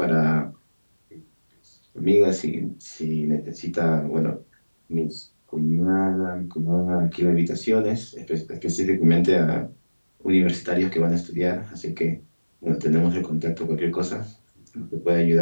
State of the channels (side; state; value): both; inverted; correlation -1.00